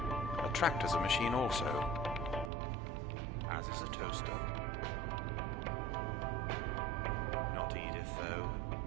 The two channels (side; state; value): left; drops out; at 2.5 s